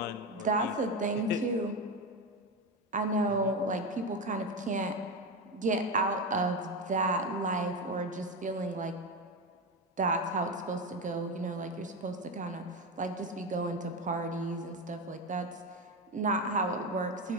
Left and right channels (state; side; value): normal; both; correlation 0.15